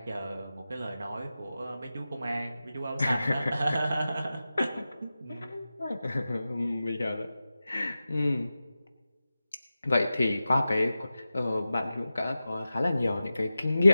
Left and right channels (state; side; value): inverted; both; correlation -0.94